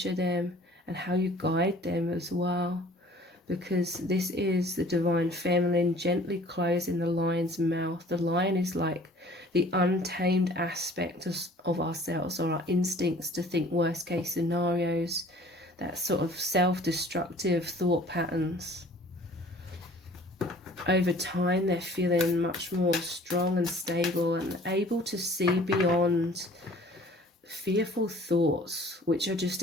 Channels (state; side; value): normal; both; correlation 0.51